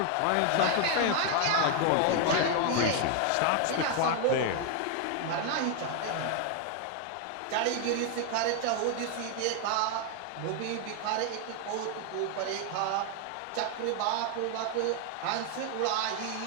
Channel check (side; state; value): both; different; correlation 0.01